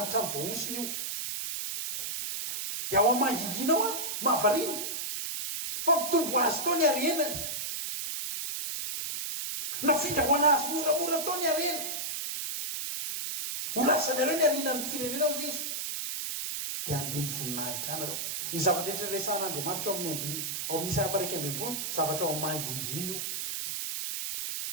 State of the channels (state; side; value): noise; right; hiss, 3 dB below the sound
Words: ny voaosiny io dia ao amanginginao a mahavariny fa mitombo azy tao ny arenany na findrahoana azy moramora tao ny arena ho lasanareo ny arinan'ny firenena ao izy dia andiny voninahitra anareo ny zavatra rehetra resan'Andriamanitra ao amin'ny andiny ao amin'ny Isaia 40 zavatra ao amanginginy io